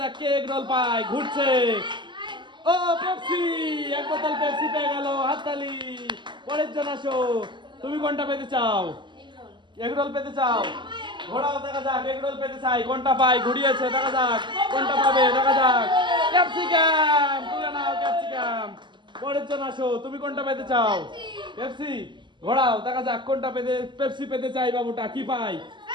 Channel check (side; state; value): left; late; 0.22 ms